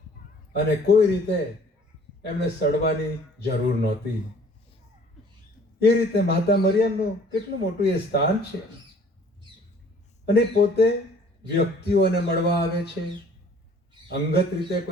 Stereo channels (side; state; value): both; normal; correlation 0.54